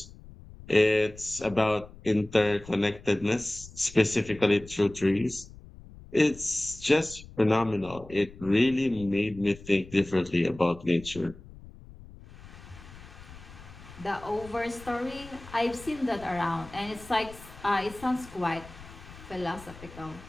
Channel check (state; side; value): noise; left; rumble, 18 dB below the sound